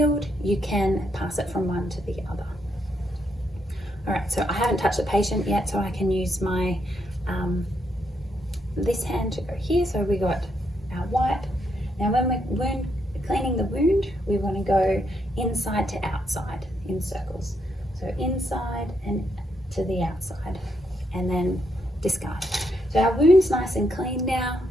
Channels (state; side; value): normal; both; correlation 0.77